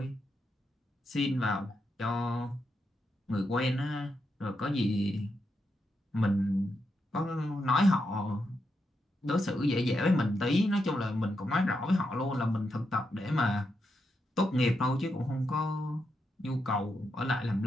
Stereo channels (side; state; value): both; normal; correlation 0.83